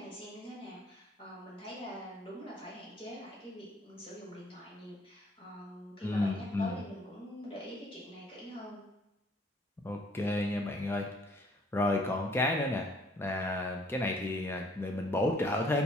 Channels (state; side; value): normal; both; correlation 0.60